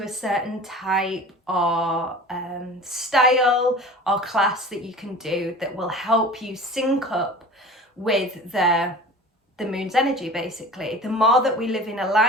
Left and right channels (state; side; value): normal; both; correlation 0.39